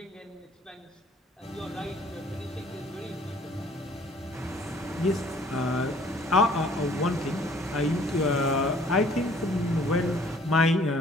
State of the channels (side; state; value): both; normal; correlation 0.57